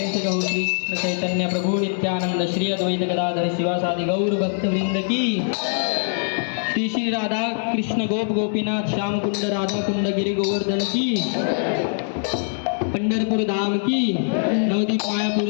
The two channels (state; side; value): silent; right; digital silence